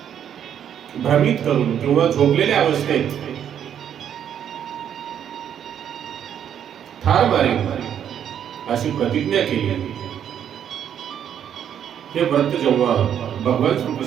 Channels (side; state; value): left; quieter; 9.2 dB